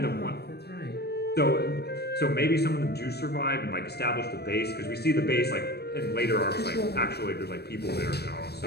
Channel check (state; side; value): late; right; 0.47 ms